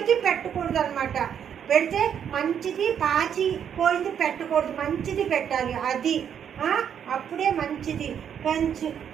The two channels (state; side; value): quieter; left; 8.5 dB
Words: పెట్టకూడదు అనమాట. పెడితే మంచిది, పాచి పోయింది పెట్టకూడదు, మంచిది పెట్టాలి. అది అప్పుడే మంచిది. మంచి